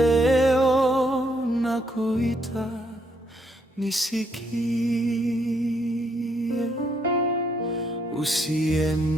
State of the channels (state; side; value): normal; both; correlation 0.73